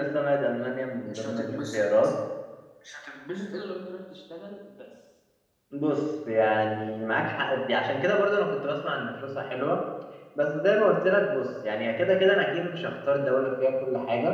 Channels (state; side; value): identical; both; correlation 1.00